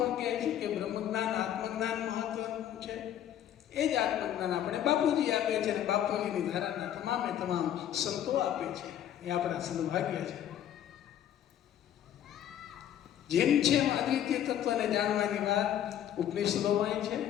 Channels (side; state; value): right; quieter; 10.8 dB